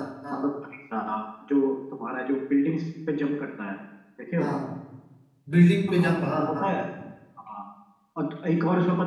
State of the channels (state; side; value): identical; both; correlation 1.00